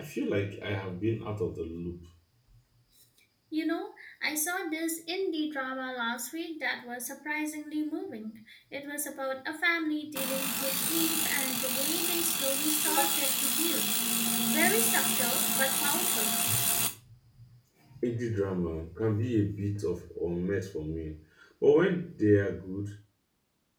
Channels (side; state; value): both; identical; correlation 1.00